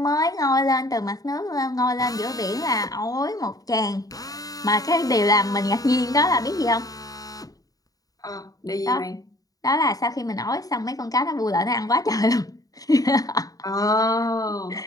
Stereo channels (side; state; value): right; late; 0.18 ms